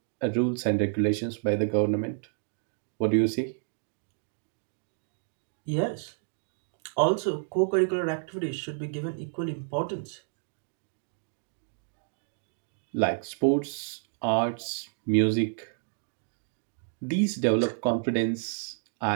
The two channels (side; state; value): left; silent; digital silence